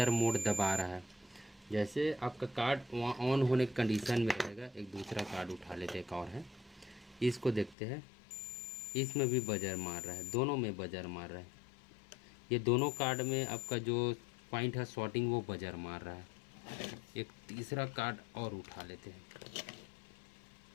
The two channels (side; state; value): right; drops out; at 7.8 s